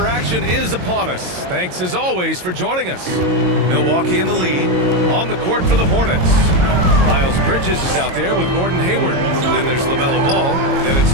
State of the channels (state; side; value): late; left; 22 ms